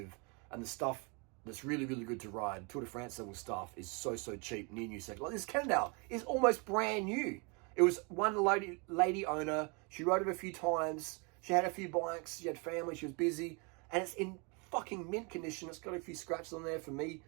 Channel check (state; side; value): quieter; left; 32.1 dB